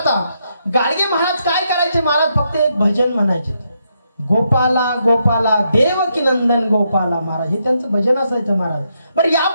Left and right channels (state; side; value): inverted; both; correlation -0.79